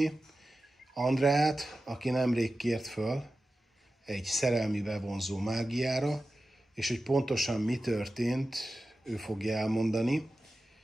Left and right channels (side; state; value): both; normal; correlation 0.94